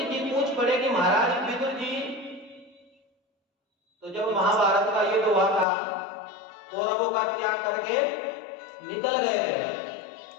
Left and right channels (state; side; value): drops out; right; at 5.7 s